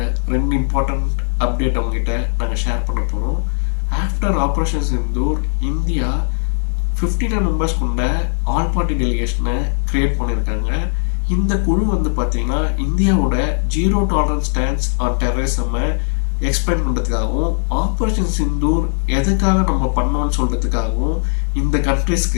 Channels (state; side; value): silent; right; 64 dB below the other